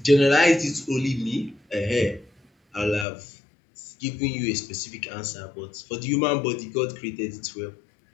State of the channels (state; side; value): drops out; right; at 3.1 s